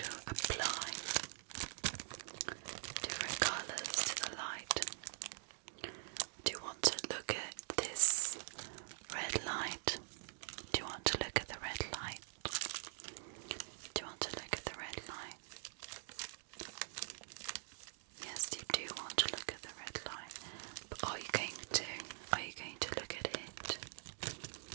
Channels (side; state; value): left; silent; digital silence